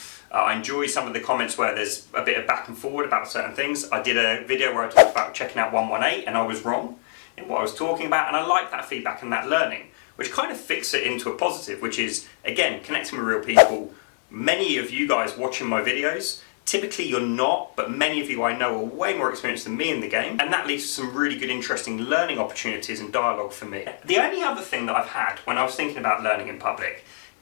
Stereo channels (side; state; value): right; silent; digital silence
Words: I enjoy some of the comments where there's a bit of back and forward about certain things. I did a video where I talked about checking out 118 and I was wrong in what I was talking about, and I like that feedback and that learning, which kind of fixes it into a positive, which is, again, connecting with real people. Many of you guys watching my videos, typically you're not, but many of you I know are way more experienced than me in the game, and that leads to some really good, interesting learning opportunities and dialogue for me. The only other thing that I've had when I was thinking about learning in public